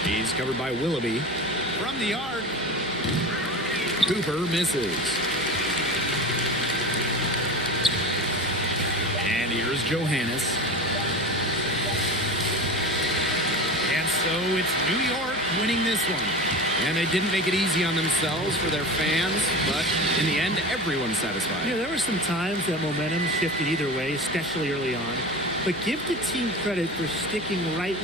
He's covered by Willoughby. From the arc, Cooper misses. And here's Johannes. And so it's New York winning this one. And they didn't make it easy on themselves for their fans, but in the end, everyone's satisfied. Yeah, there were some times that momentum shifted either way, especially early on. But give the team credit for sticking right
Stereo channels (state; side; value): noise; right; hum, 17 dB below the sound